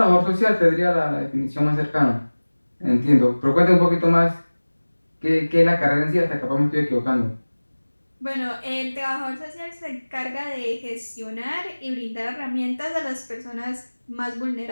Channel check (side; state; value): both; inverted; correlation -1.00